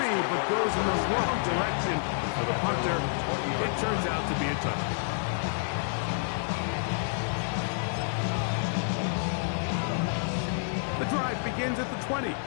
but goes in the wrong direction for the punter. It turns out to be a touchdown. The drive begins at the 20.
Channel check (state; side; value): silent; right; digital silence